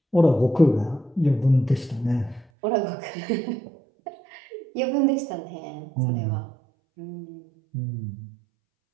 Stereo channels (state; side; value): drops out; left; at 2.5 s